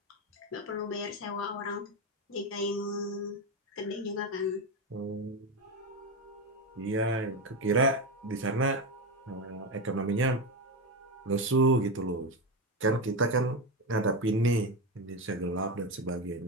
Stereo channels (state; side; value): normal; both; correlation 0.14